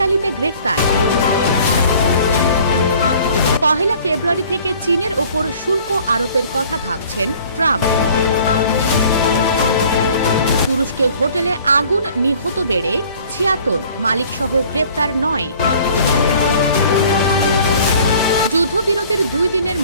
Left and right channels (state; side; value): inverted; both; correlation -0.52